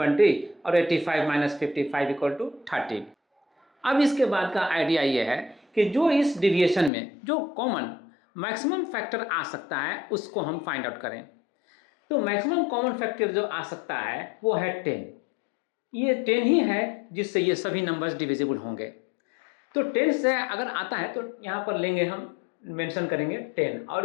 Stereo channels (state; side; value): drops out; right; at 6.9 s